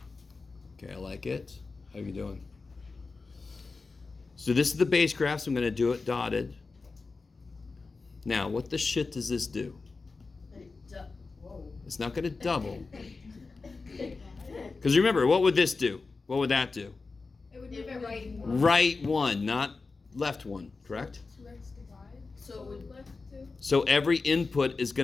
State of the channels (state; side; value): quieter; right; 4.1 dB